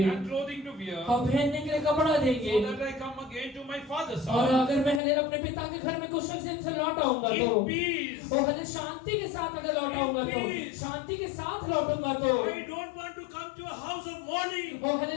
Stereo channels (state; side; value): drops out; right; at 5.0 s